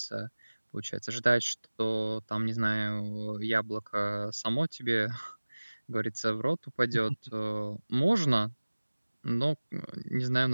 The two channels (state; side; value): inverted; both; correlation -1.00